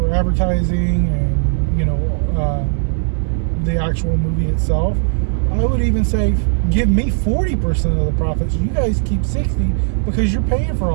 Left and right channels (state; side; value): silent; left; digital silence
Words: advertising and, you know, the actual movie itself, I would even say, give me 40% of the profits. You guys keep 60 because you're paying for